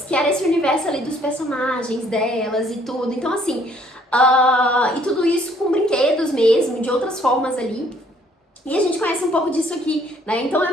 que era esse universo ali dos personagens delas e tudo. Então, assim, e tudo isso com brinquedos mesmo, de outras formas ali. E a gente conhece um pouco disso aqui, né? Então é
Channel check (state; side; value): normal; both; correlation 0.62